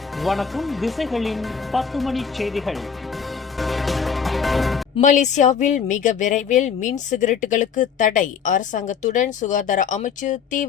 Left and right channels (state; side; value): quieter; right; 6.9 dB